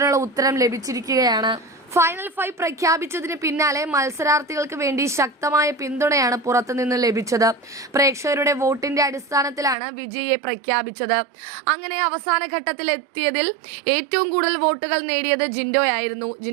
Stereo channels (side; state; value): left; drops out; at 9.8 s